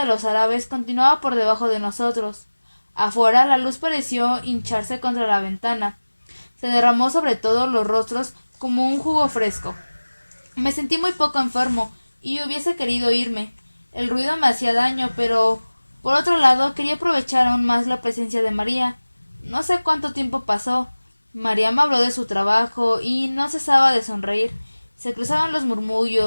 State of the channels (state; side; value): inverted; both; correlation -1.00